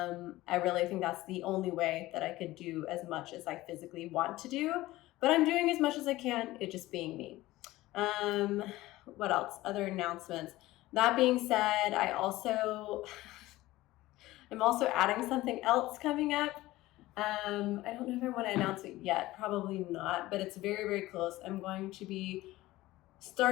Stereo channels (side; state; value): right; quieter; 17.6 dB